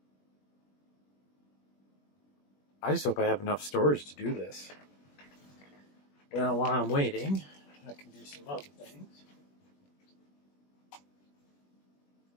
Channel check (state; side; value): late; right; 21 ms